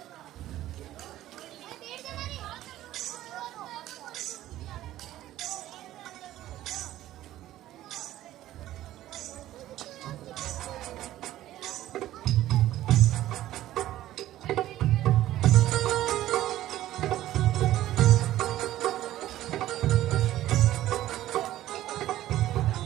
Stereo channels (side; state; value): left; quieter; 14.0 dB